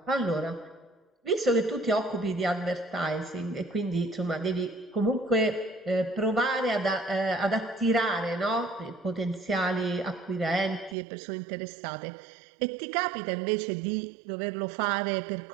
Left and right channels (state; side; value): drops out; left; at 11.0 s